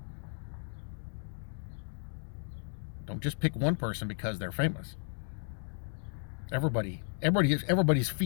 Don't just pick one person because they're famous. Everybody's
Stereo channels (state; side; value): silent; right; digital silence